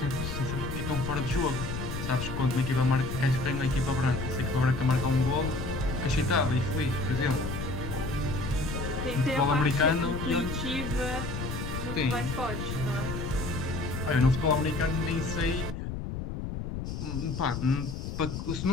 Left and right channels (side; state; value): left; noise; rumble, 5 dB below the sound